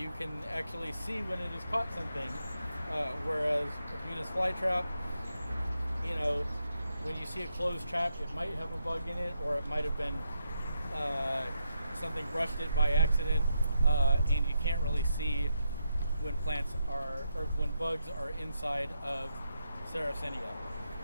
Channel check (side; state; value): both; inverted; correlation -0.82